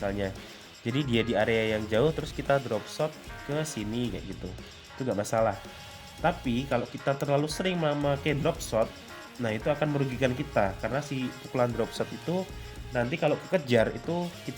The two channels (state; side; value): identical; both; correlation 1.00